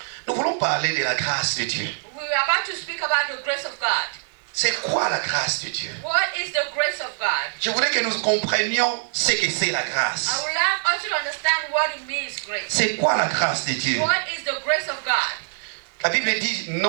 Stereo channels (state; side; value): silent; left; 60 dB below the other